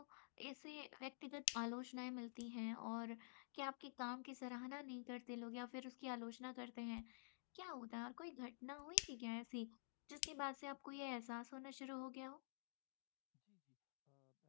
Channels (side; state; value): right; silent; digital silence